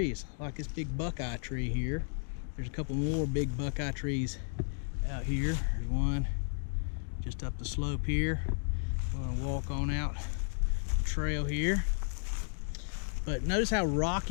like this big buckeye tree here. There's a couple more big buckeye trees out here. There's one just up the slope here. We're gonna walk on out the trail here. But notice how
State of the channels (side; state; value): right; silent; digital silence